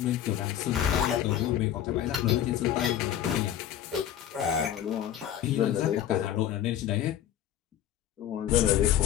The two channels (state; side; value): quieter; right; 10.9 dB